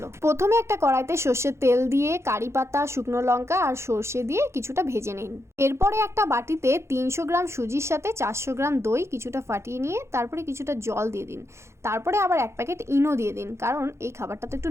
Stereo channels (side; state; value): left; late; 0.13 ms